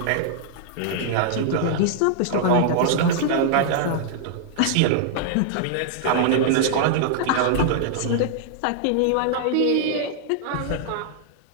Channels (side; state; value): both; different; correlation -0.01